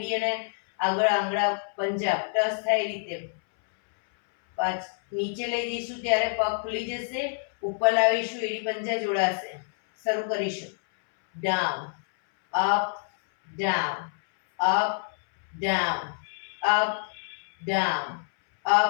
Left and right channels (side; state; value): right; silent; 60 dB below the other